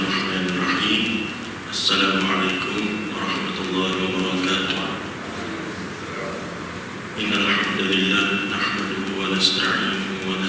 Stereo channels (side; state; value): both; identical; correlation 1.00